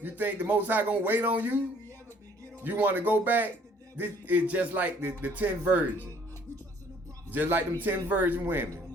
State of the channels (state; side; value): normal; both; correlation 0.59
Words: You think the Most High gonna wait on you? You want to go back? It's just like the 10 virgins. Just like them 10 virgin